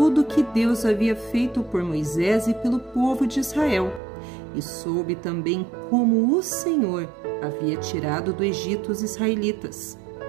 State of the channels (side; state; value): left; drops out; at 4.0 s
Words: que Deus havia feito por Moisés e pelo povo de Israel, e soube também como o Senhor havia tirado do Egito os israelitas.